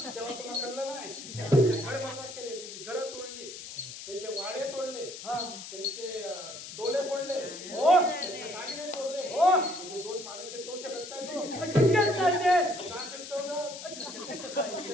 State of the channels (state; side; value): noise; left; hiss, 11 dB below the sound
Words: तेव्हा तुला कळलं नाही त्यांचे घर बरबाद केले, त्यांची घरं तोडली, त्यांचे वाडे तोडले, हा. त्यांचे डोले फोडले, हो. त्यांचे दागिने तोडले, हो. म्हणजे दोन पाण्याचे टोचे करताय तो शक्यच नाही ते. का चिकटवलं? शक्य कसं आहे?